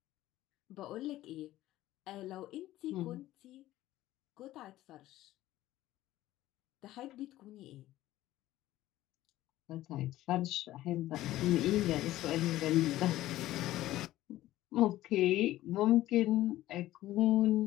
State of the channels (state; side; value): quieter; right; 15.2 dB